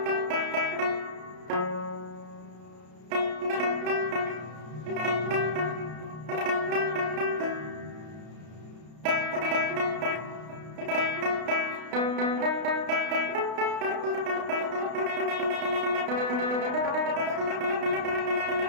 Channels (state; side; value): late; left; 32 ms